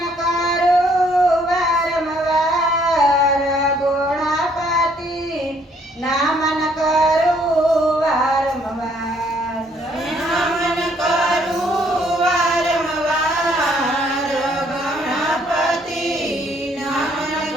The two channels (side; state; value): both; normal; correlation 0.65